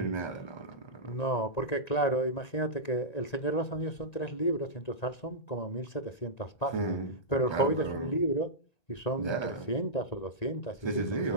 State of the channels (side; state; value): right; late; 1.9 ms